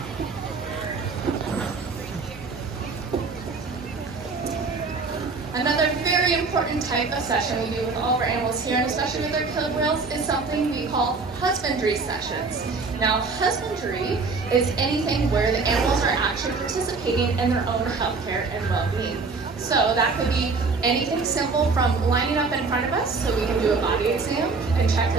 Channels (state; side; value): quieter; left; 4.3 dB